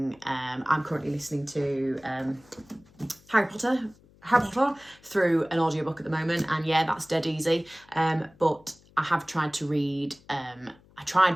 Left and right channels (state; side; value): noise; left; hum, 28 dB below the sound